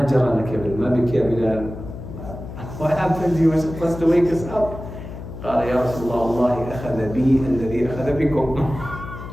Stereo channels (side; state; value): left; noise; hum, 11 dB below the sound